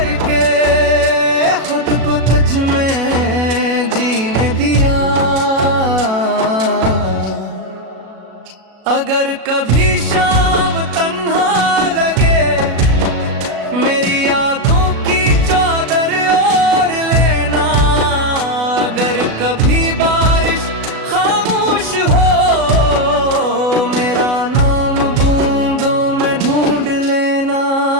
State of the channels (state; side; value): late; left; 37 ms